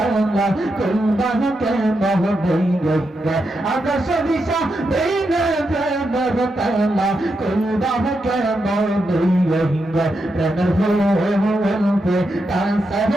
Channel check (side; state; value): both; normal; correlation 0.85